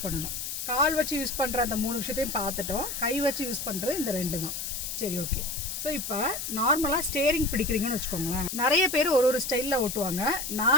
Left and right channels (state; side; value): noise; left; hiss, 5 dB below the sound